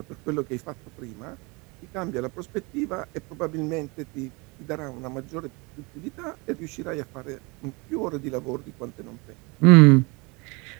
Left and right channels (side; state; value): left; quieter; 27.6 dB